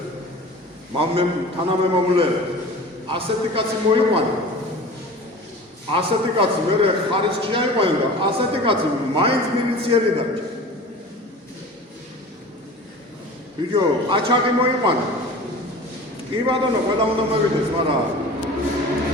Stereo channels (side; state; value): both; normal; correlation 0.38